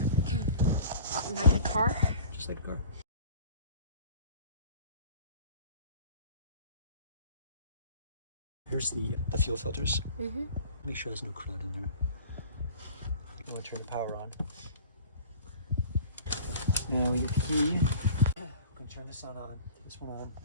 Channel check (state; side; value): inverted; both; correlation -0.45